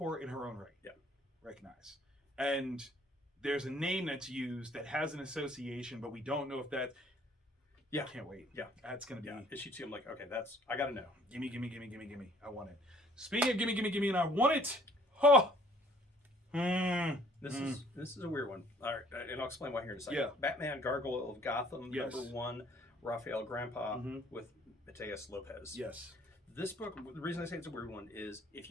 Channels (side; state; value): both; normal; correlation 0.58